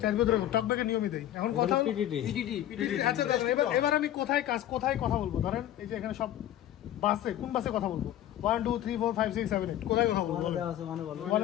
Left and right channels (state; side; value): quieter; right; 12.4 dB